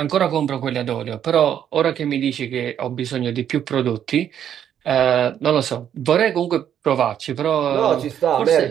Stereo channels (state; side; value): quieter; left; 9.6 dB